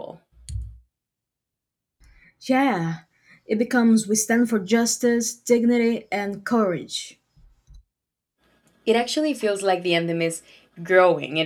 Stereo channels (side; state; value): both; identical; correlation 1.00